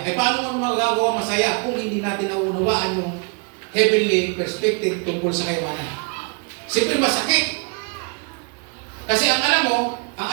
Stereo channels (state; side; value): quieter; left; 33.7 dB